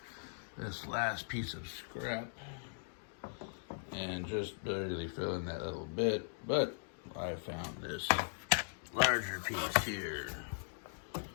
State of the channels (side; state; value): right; silent; digital silence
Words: this last piece of scrap and just barely fill in that little bit, but I found this larger piece here